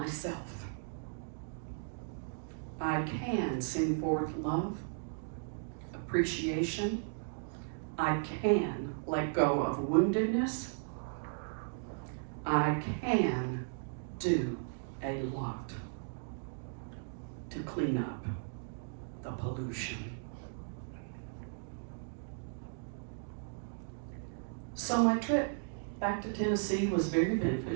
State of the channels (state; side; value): silent; left; digital silence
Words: I can send forth love, appreciation. I can let go of woundedness. I can do a lot to clean up the pollution. So my trip back to Tennessee was very